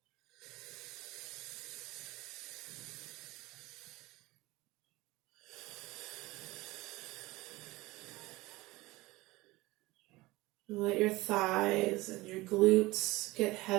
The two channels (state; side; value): quieter; left; 20.4 dB